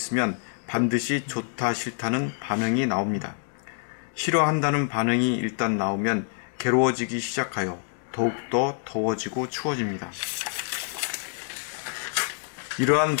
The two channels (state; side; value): silent; right; digital silence